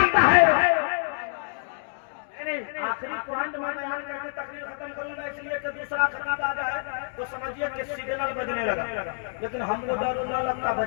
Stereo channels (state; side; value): silent; right; 60 dB below the other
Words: है आखिरी पॉइंट में बयान करके तकरीर खत्म करूंगा, इसलिए कि दूसरा खत्म आ जाए तो समझिए कि सिग्नल बजने लगा। लेकिन हमको डर न लगता,